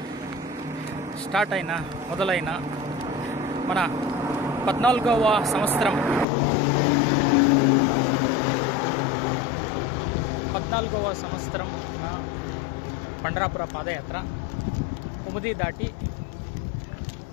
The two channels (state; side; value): drops out; right; at 6.2 s